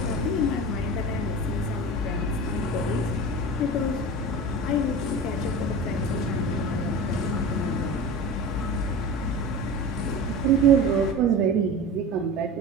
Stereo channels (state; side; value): normal; both; correlation 0.31